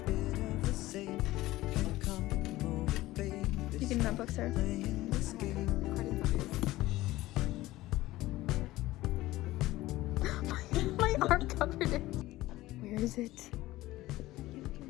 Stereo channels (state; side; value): quieter; right; 17.2 dB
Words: You getting that book, sir? My arm covered it. Where is it?